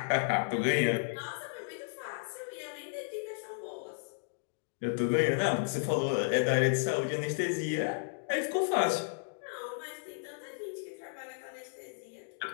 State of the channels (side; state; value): right; silent; digital silence